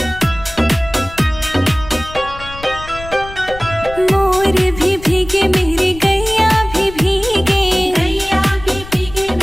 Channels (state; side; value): noise; left; rumble, 14 dB below the sound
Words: मोर भी भीगे, मेरी गैया भी भीगे, गैया भी भीगे,